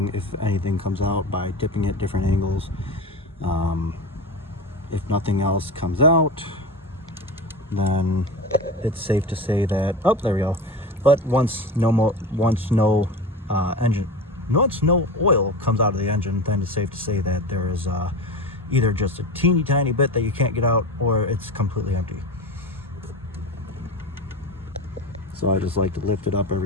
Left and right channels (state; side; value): normal; both; correlation 0.27